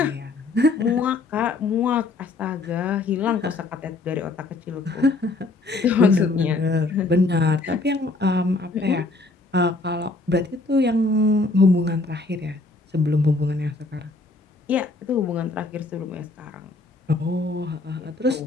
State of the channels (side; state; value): right; quieter; 3.3 dB